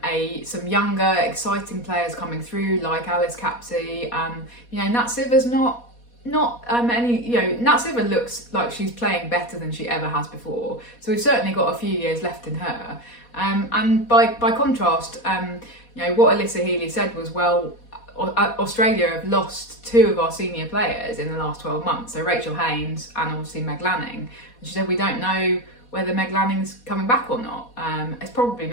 some younger, exciting players coming through like Alice Capsey. Nat Sitter's not not any, Natseva looks like she's playing better than she ever has before. So we've certainly got a few years left in her. And by contrast, what Alyssa Healy said was, well, Australia have lost 2 of our senior players in the last 12 months. So Rachel Haynes and obviously Meg Lanning. And she said, we don't know whether Meg Lanning's coming back or not. It's probably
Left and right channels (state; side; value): late; right; 4.2 ms